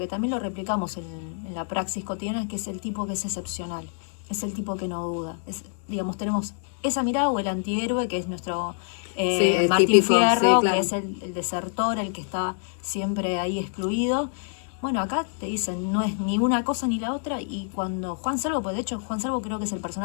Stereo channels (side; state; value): right; silent; 61 dB below the other